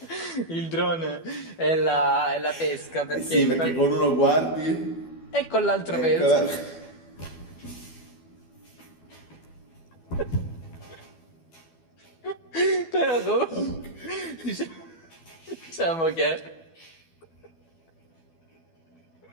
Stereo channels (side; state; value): right; late; 12 ms